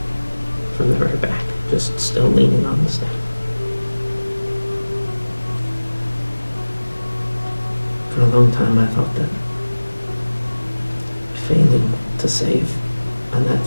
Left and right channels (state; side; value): inverted; both; correlation -1.00